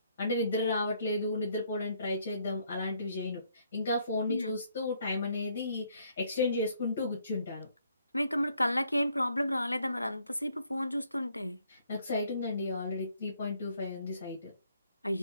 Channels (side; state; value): both; inverted; correlation -0.69